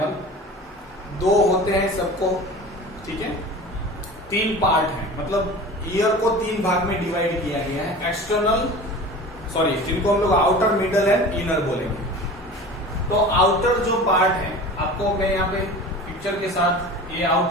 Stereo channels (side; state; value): both; normal; correlation 0.37